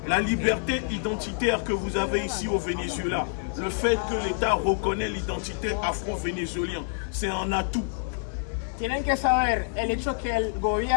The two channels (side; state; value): right; silent; digital silence